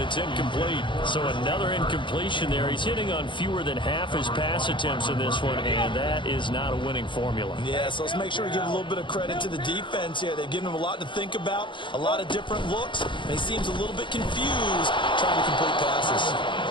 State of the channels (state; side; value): late; right; 0.23 ms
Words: incomplete. So another incompletion there. He's hitting on fewer than half his pass attempts in this one, and that is not a winning formula. Yeah, so let's make sure we give a little bit of credit to the defense here. They've given him a lot to think about, a lot of different looks, and he seems a little bit confused trying to complete passes.